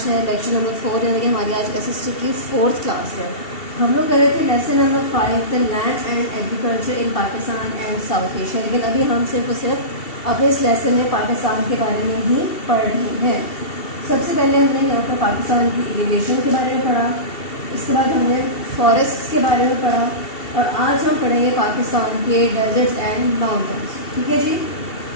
है लेक्चर नंबर 4, यानी कि हमारी आज एसएसटी की 4th क्लास है। हम लोग कर रहे थे lesson number 5 the land and agriculture in Pakistan and south Asia, लेकिन अभी हम सिर्फ और सिर्फ अपने इस लेसन में पाकिस्तान के बारे में ही पढ़ रहे हैं। सबसे पहले हमने यहाँ पर पाकिस्तान की एलिवेशन के बारे में पढ़ा, इसके बाद हमने फॉरेस्ट के बारे में पढ़ा, और आज हम पढ़ेंगे पाकिस्तान के डेजर्ट्स एंड माउंटेन्स, ठीक है जी।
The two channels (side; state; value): right; late; 2.7 ms